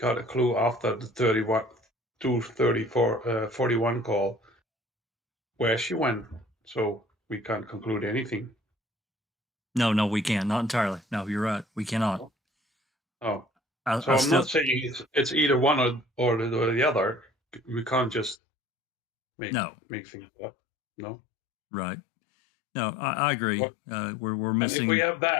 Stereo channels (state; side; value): drops out; right; at 18.4 s